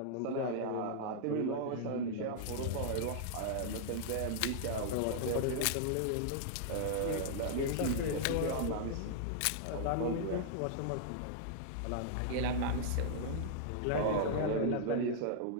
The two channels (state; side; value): different; both; correlation -0.01